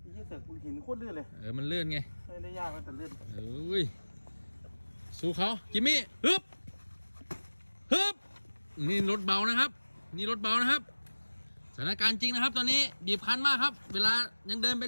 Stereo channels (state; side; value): inverted; both; correlation -1.00